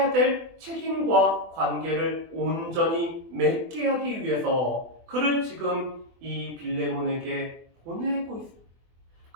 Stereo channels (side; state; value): left; late; 24 ms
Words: 될 책임과 관계를 온전히 맺게 하기 위해서 그를 지금 이 빌레몬에게 보내고 있습니다.